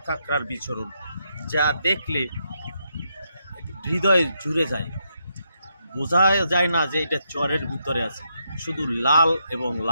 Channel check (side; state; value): both; inverted; correlation -0.80